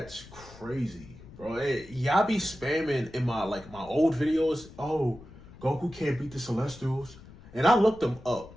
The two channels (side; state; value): left; noise; rumble, 19 dB below the sound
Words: crazy, bro. Hey, y'all be spamming in my old videos. Oh, Goku can't beat the Celestials. And I looked them up.